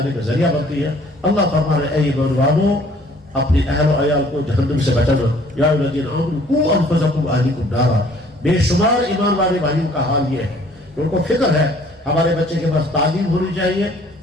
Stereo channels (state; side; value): normal; both; correlation 0.57